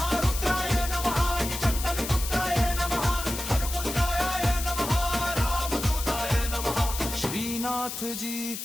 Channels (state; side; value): noise; left; hiss, 7 dB below the sound